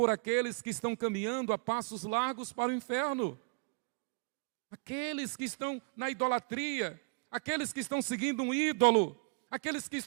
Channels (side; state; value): left; quieter; 33.3 dB